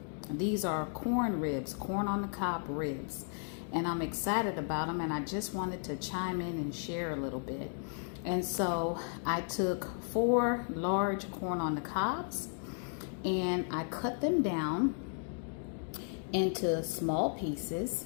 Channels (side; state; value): right; silent; 55 dB below the other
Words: These are corn ribs, corn on the cob ribs, and I'm excited about them, and I just wanted to chime in and share a little bit. And so I took 4 large corn on the cobs and I cut them down into small pieces,